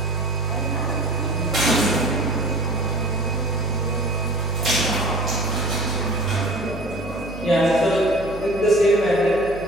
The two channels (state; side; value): noise; right; hum, 13 dB below the sound